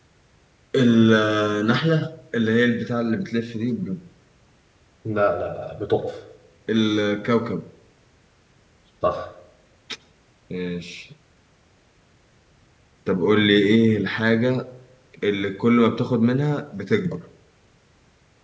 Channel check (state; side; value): identical; both; correlation 1.00